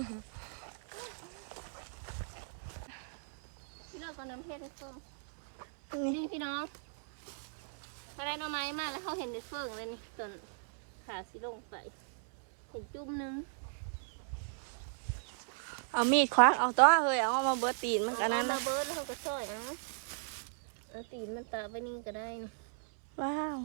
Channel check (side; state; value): left; silent; 53 dB below the other